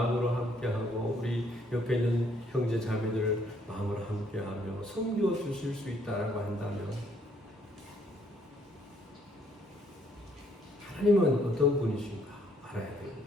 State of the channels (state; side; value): normal; both; correlation 0.68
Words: 함께하고 우리 옆에 있는 형제 자매들 마음으로 함께하며 섬겨 주실 수 있다라고 한다면, 하나님은 어떤 분이신가 알아야